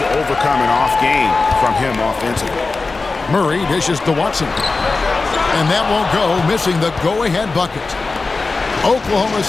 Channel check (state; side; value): quieter; right; 3.8 dB